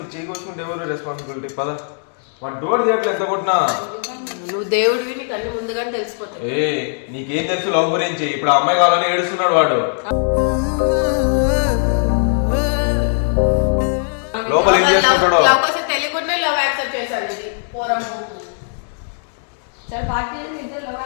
చేయకొచ్చుకుంటే ఎవరు రెస్పాన్సిబిలిటీ? పద, వాడు డోర్ తీయట్లేదు ఎంత కొట్టినా. నువ్వు దేవుడివి, నీకు అన్ని ముందుగానే తెలిసిపోతాయి. ఏ నీకేం తెలుసు లవ్ గురించి? ఇప్పుడు ఆ అమ్మాయి కావాలని ఏడుస్తున్నాడు వాడు. లోపల ఏం చేసుకుంటాడో? తెలియకుండా లవ్ యాక్సెప్ట్ చేశాను. ఇది పోరం సరే పార్టీ ఇద్దరు లవ్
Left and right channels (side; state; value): right; silent; digital silence